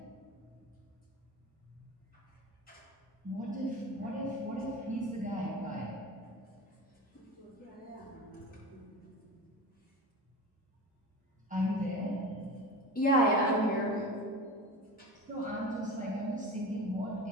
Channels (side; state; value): both; normal; correlation 0.31